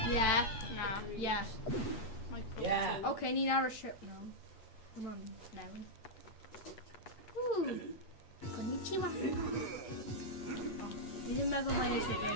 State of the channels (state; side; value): late; right; 8.3 ms